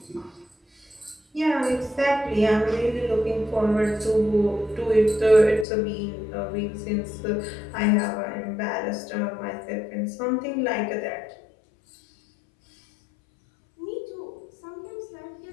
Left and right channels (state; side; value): drops out; right; at 5.7 s